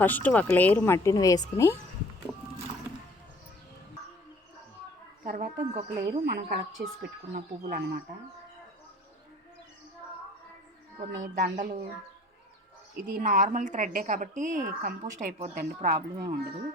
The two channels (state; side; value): normal; both; correlation 0.51